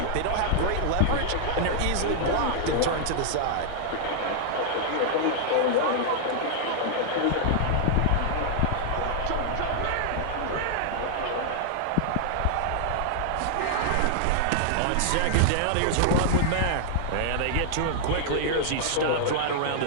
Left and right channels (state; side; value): different; both; correlation -0.01